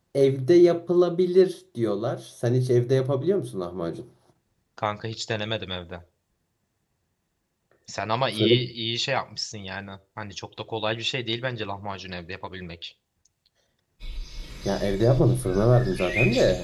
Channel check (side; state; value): both; identical; correlation 1.00